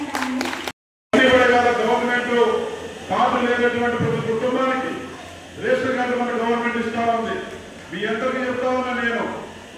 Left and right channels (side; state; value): both; identical; correlation 1.00